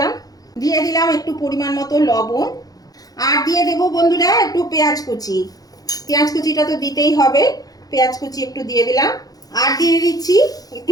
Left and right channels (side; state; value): right; late; 0.18 ms